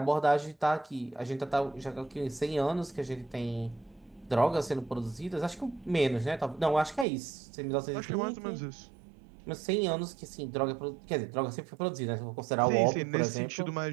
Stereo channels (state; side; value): drops out; left; at 7.1 s